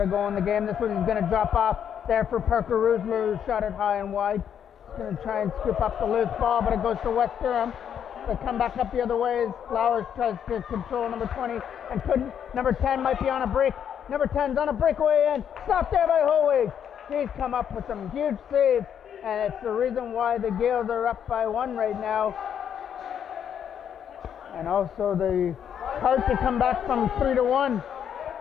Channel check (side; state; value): right; quieter; 8.7 dB